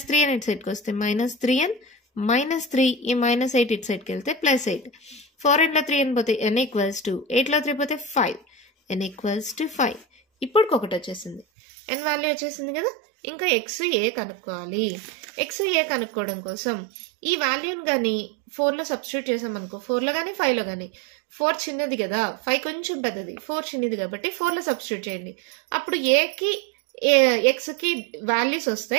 3n ఇటు సైడ్కి వస్తే minus 3n minus 3, ఈ minus 8 ఇటు సైడ్కి వెళ్తే ప్లస్ 8. 4nలో 3n పోతే n ఈక్వల్స్ టు 8లో 3 పోతే 5. n equals to 5. ఇప్పుడు ఒకటి వచ్చేసింది, n వాల్యూ వచ్చేసింది కదా. ఇంకా ఎక్స్ ఏ కనుక్కోవాలి. ఎక్స్ ఏ కనుక్కోవడం కోసం ఈ వాల్యూని కానీ 4లో సబ్స్టిట్యూట్ చేసామనుకో, 4లో కానీ 5లో కానీ. 4 చిన్నది కదా, 5 కొంచెం పెద్దది, 4 చిన్నది కాబట్టి 4లో సబ్స్టిట్యూట్ చేయండి. అప్పుడు ఏకి ఎక్స్కి వాల్యూస్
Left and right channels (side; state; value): left; drops out; at 11.5 s